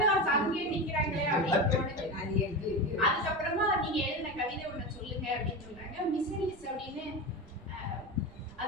அங்கேயே நிக்கிறாங்களே அப்படின்னு தோணுது. அதுக்கப்புறமா நீங்க எழுதின கவிதை ஒண்ணு சொல்லுங்க அப்படின்னு சொல்றாங்க. மிஸ்ஸரிஸ் அப்படின்னு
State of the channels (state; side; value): noise; right; rumble, 23 dB below the sound